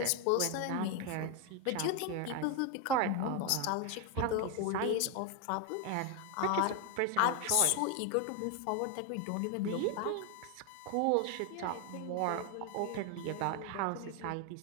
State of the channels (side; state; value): both; different; correlation 0.01